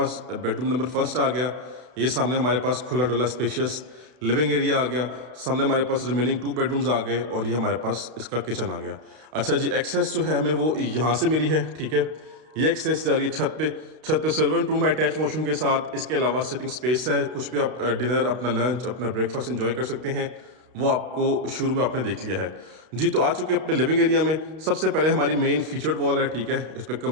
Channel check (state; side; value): late; left; 32 ms